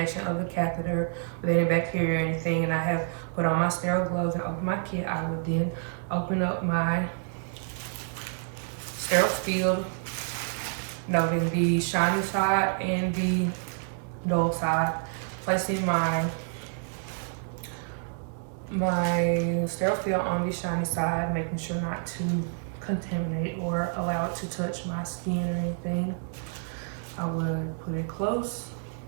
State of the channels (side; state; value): left; silent; 59 dB below the other